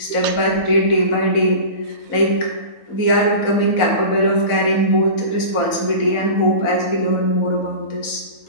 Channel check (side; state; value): right; late; 4.1 ms